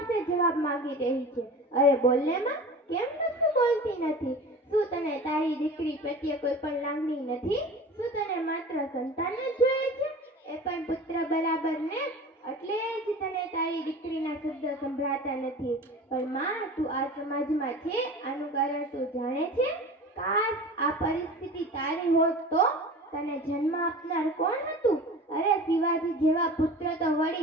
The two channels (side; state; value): both; normal; correlation 0.37